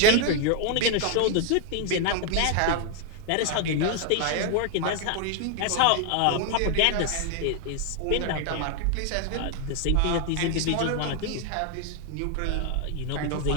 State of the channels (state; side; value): different; both; correlation 0.00